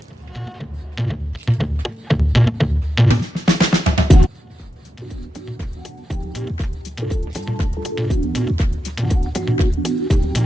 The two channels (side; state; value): both; normal; correlation 0.89